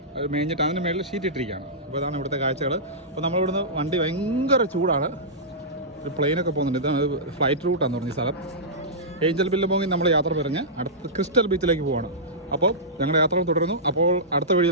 മേഞ്ഞിട്ട് അതിന് മേളിൽ ഷീറ്റ് ഇട്ടിരിക്കുകയാണ്. അപ്പോൾ ഇതാണ് ഇവിടുത്തെ കാഴ്ചകൾ. അപ്പോൾ നമ്മളിവിടുന്ന് വണ്ടി ഭയങ്കര ചൂടാണ്. ഒരു പ്ലെയിനൊക്കെ പോകുന്നുണ്ട്. ഇതാണ് ഫ്ലൈറ്റ് റൂട്ടാന്ന് പറഞ്ഞ സ്ഥലം. ഏഞ്ചൽ ബില്ലബോങ്ങിൽ നമ്മൾ യാത്ര പറഞ്ഞ് അടുത്ത ക്രിസ്റ്റൽ ബീച്ചിലേക്ക് പോവാണ്. അപ്പോൾ ഞങ്ങളുടെ യാത്ര തുടരുന്നു. അപ്പോൾ അടുത്ത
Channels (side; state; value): both; normal; correlation -0.15